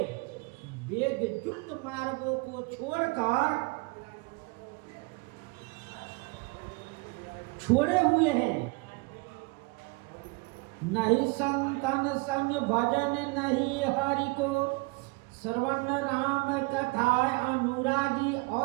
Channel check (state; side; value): quieter; left; 27.5 dB